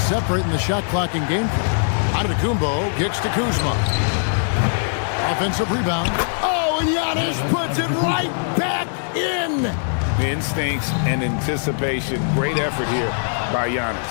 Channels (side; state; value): right; silent; digital silence